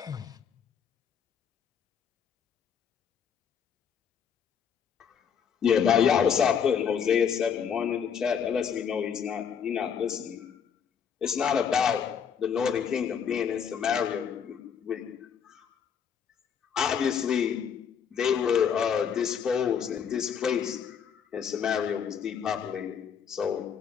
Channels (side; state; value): right; quieter; 7.5 dB